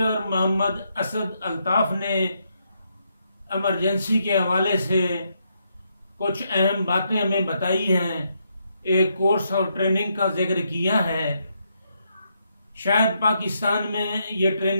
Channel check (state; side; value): inverted; both; correlation -0.78